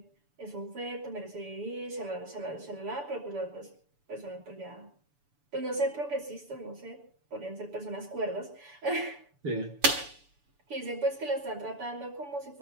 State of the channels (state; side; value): late; left; 7.0 ms